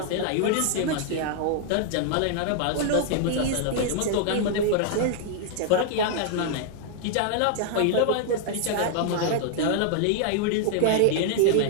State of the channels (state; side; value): different; both; correlation 0.00